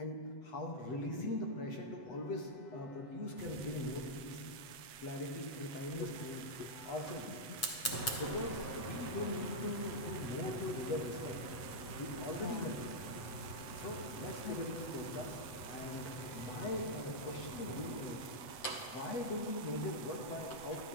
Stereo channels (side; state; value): right; late; 7.7 ms